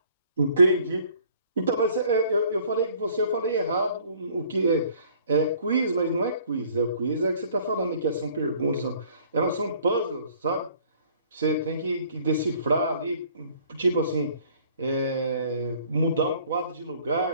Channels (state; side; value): inverted; both; correlation -0.56